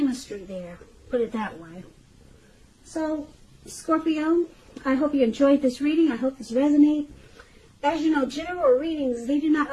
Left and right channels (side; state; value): both; identical; correlation 1.00